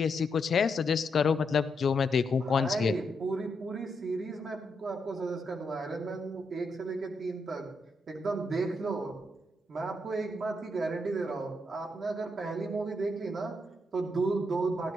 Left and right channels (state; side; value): normal; both; correlation 0.80